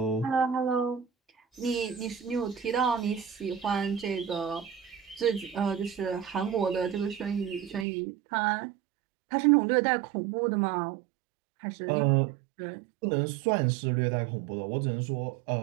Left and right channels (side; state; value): left; drops out; at 7.9 s